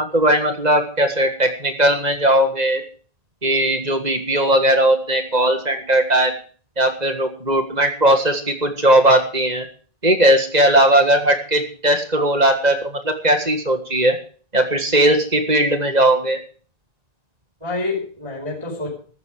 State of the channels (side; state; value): left; late; 2.0 ms